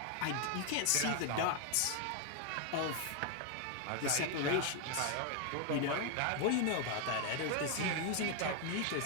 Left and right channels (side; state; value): both; different; correlation 0.01